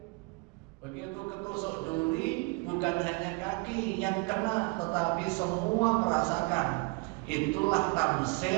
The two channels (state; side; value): quieter; left; 28.3 dB